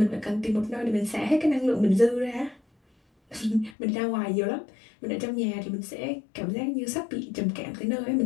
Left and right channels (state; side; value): drops out; right; at 3.8 s